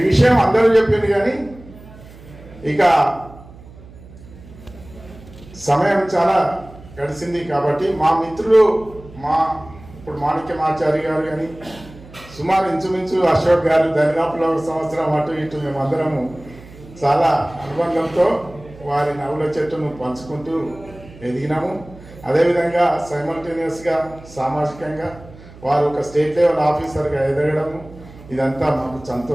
విషయం అందరూ చెప్పింది. కానీ ఇక సమయం చాలా గడిచింది కాబట్టి మా మిత్రులు ఇప్పుడు మాణిక్యమాచారి గారు కానీ సుమారు ఇంచుమించు అశోక్ గారు దరిదాపులో 1 సంవత్సరం అటు ఇటు మేమందరము చాలా అనుబంధంతో వారి నవ్వుల చెట్టును పంచుకుంటూ ఎదిగినాము. అదేవిధంగా సైమల్టేనియస్గా సామాజికంగా వారు ఒక స్టేట్ లెవెల్ ఆఫీసర్గా ఎదగడము ఇదంతా మాకు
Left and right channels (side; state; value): right; noise; hum, 20 dB below the sound